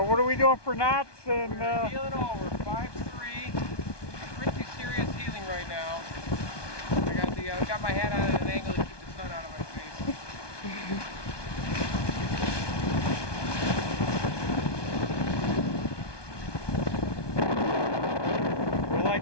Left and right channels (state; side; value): late; right; 1.2 ms